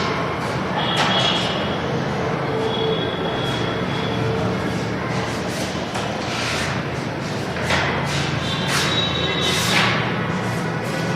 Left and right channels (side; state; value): both; identical; correlation 1.00